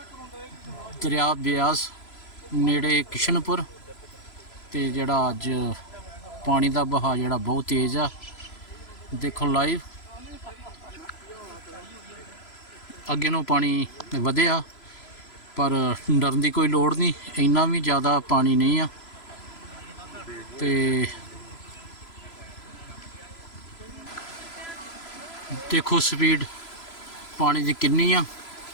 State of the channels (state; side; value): late; right; 3.0 ms